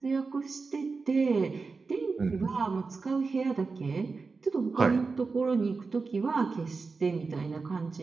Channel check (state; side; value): quieter; left; 4.4 dB